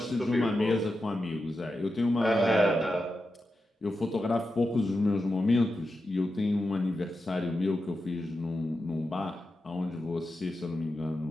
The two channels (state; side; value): normal; both; correlation 0.89